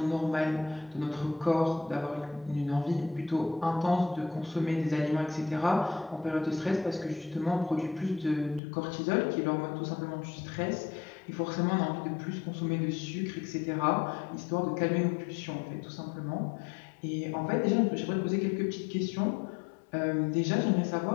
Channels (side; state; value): right; drops out; at 8.6 s